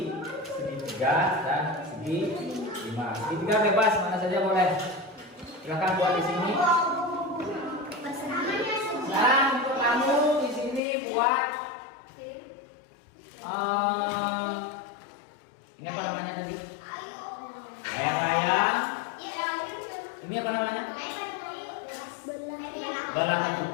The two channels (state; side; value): drops out; right; at 10.8 s